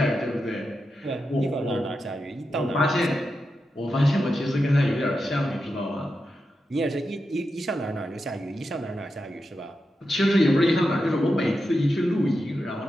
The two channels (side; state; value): both; normal; correlation 0.88